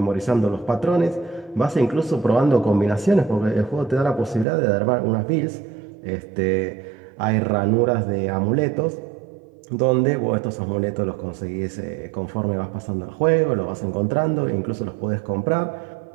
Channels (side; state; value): left; drops out; at 4.5 s